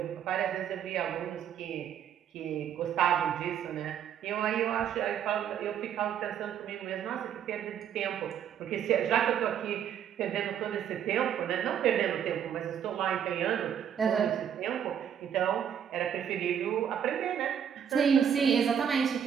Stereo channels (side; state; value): left; quieter; 8.8 dB